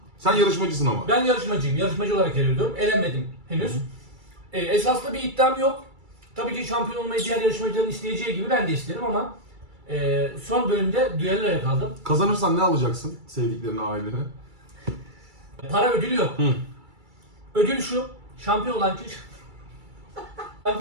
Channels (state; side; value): late; left; 2.3 ms